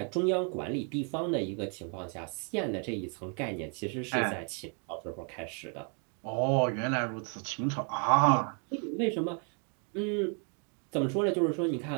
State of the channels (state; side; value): quieter; left; 39.8 dB